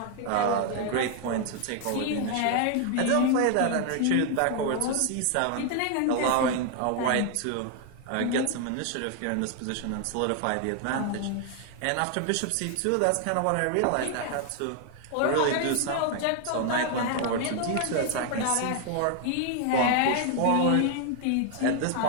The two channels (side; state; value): both; different; correlation 0.00